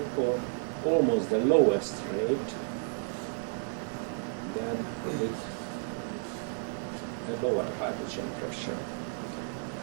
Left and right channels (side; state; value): left; silent; 57 dB below the other